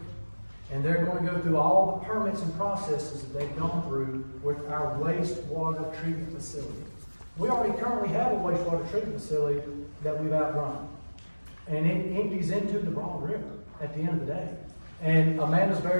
and they're going to go through all the permits and processes that they've gone through with our wastewater treatment facility. We already currently have a wastewater treatment facility that we've outrun, and it empties into the Broad River at the end of the day. And Amanda's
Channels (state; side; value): inverted; both; correlation -1.00